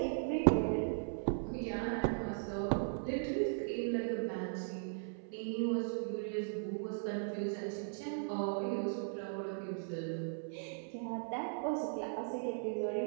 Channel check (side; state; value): left; silent; 52 dB below the other